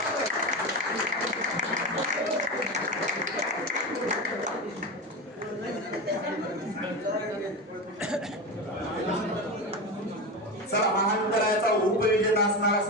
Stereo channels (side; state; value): both; normal; correlation 0.21